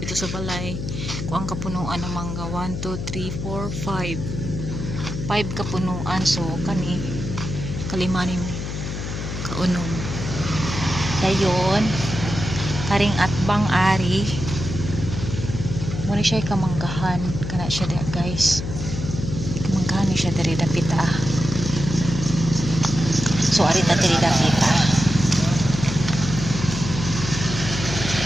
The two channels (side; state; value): left; noise; hum, 5 dB below the sound